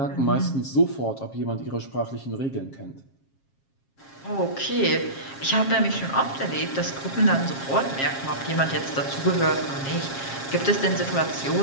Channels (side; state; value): right; late; 7.4 ms